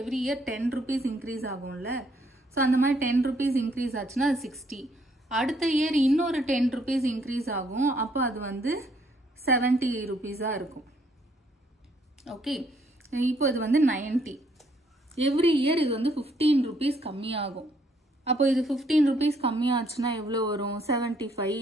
இயர் 10 rupees இன்க்ரீஸ் ஆகும்ல. ஸோ அந்த மாதிரி 10 rupees இன்க்ரீஸ் ஆச்சுன்னா அது 60. அடுத்த இயர் இன்னொரு 10 rupees இன்க்ரீஸ் ஆகும். அப்போ அது வந்து 70 rupeesஆ இருக்கும். ஓகே, இப்போ இது வந்து 90. எவ்ரி இயர் இது வந்து 15 rupees கம்மியாகும். அப்போ இது 15 rupees கம்மியாச்சுன்னா எவ்வளோ வரும்? 75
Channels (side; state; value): both; normal; correlation 0.68